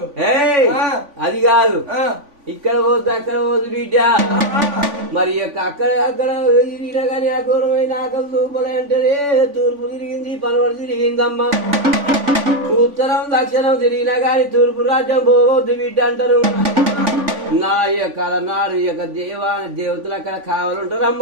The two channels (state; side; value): late; left; 3.5 ms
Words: అది కాదు ఇక్కడ పోద్దు అక్కడ పోద్దు బిడ్డ మరి అక్కడ అక్కడ తిరిగినా కానీ ఆ ఘోరమైన ఆకలి తూపలే అంటే తూర్పు తిరిగింది పనవడు తిరిగిందమ్మా ఉత్తరం దక్షిణం తిరిగినా కానీ తూర్పు రాజ్యం పోవద్దు బిడ్డ అంటారు నా యొక్క నాడు ఈ యొక్క దేవతలు అక్కడ